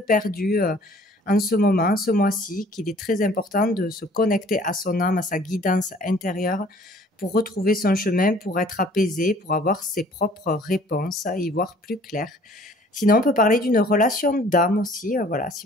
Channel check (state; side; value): normal; both; correlation 0.54